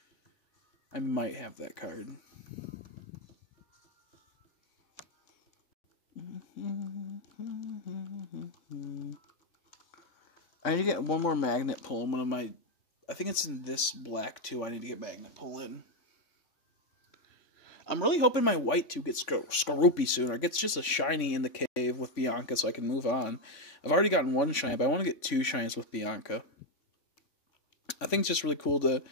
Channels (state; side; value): late; right; 3.5 ms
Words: I might have that card. I need to get one more magnet pull in one of my... I think it's in this black, too. I need to get magnet pull in. I'm really hoping my white, too, gets Skorupi soon, or gets just a shiny in the cave with Bianca so I can move on. I've already gotten one shiny, but I want to get 2 shinies with Bianca. I think it's just really cool to